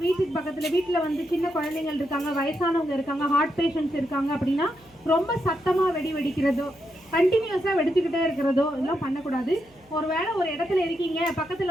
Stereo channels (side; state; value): right; noise; hum, 30 dB below the sound